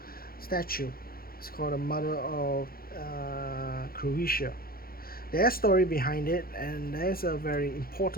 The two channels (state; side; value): late; right; 0.43 ms